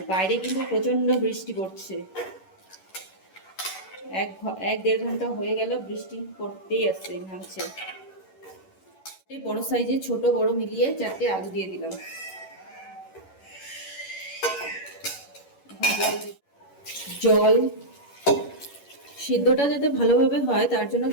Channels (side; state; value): right; late; 11 ms